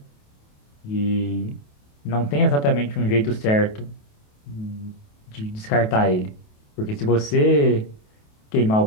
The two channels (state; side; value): late; right; 28 ms